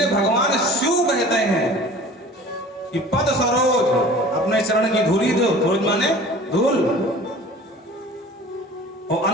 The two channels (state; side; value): normal; both; correlation 0.43